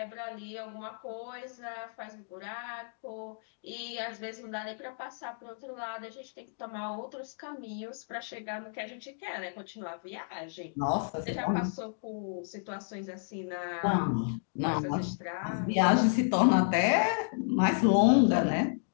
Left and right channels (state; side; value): silent; right; digital silence